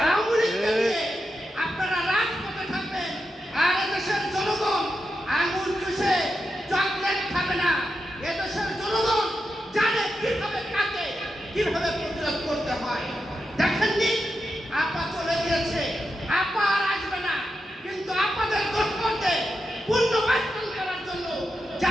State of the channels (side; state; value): both; normal; correlation 0.87